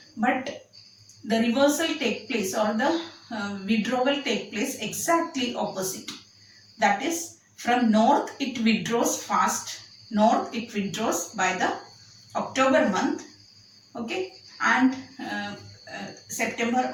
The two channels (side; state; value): both; identical; correlation 1.00